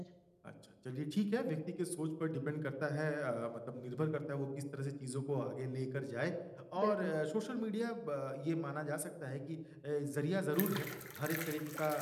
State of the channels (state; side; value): identical; both; correlation 1.00